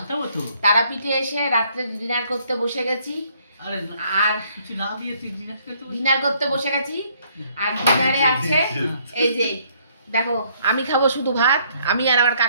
তারাপীঠে এসে রাত্রে ডিনার করতে বসে গেছি। আর ডিনার করতে বসে গেছি। আর ডিনারে আছে এই যে দেখো, আমি খাবো শুধু ভাত, আমি আর আমার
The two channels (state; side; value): inverted; both; correlation -0.66